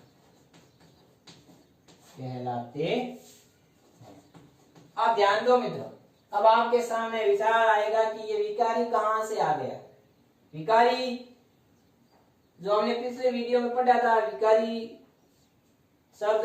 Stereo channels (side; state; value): both; identical; correlation 1.00